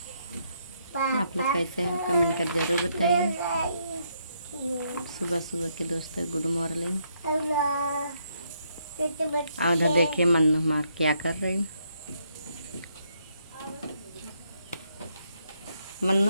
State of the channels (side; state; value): both; inverted; correlation -0.75